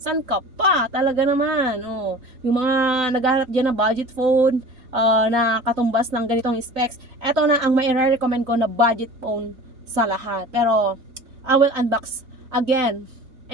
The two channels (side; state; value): left; late; 3.9 ms